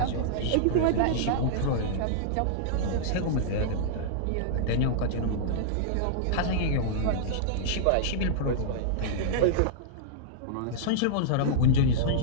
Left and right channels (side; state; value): both; different; correlation -0.02